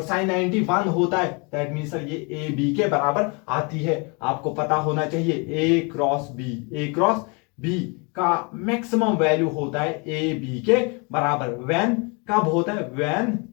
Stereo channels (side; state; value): right; quieter; 31.9 dB